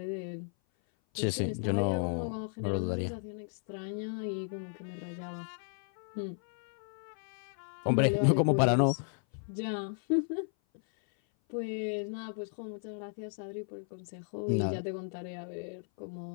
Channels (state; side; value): silent; right; 55 dB below the other